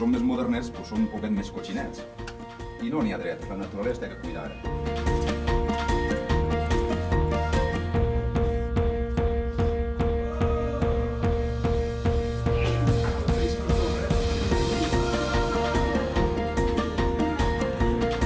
més modernets pues som un poquet més cotxinets i no n'hi ha dret, la naturalesa té que cuidar.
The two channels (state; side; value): identical; both; correlation 1.00